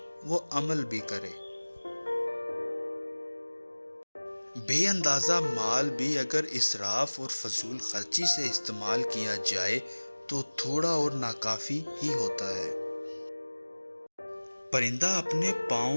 وہ عمل بھی کرے۔ بے اندازہ مال بھی اگر اسراف اور فضول خرچی سے استعمال کیا جائے تو تھوڑا اور ناکافی ہی ہوتا ہے۔ پرندہ اپنے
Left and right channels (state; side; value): inverted; both; correlation -1.00